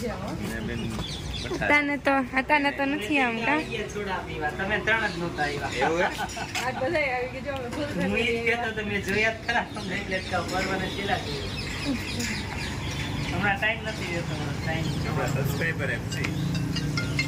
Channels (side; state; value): both; identical; correlation 1.00